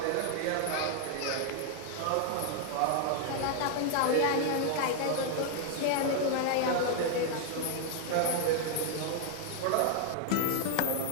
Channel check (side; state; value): both; different; correlation 0.00